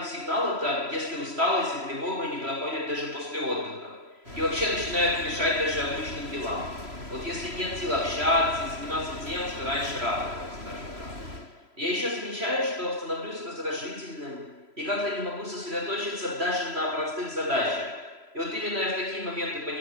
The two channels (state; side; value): late; left; 3.0 ms